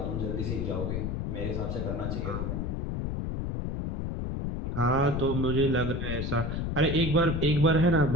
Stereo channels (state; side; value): noise; left; rumble, 2 dB below the sound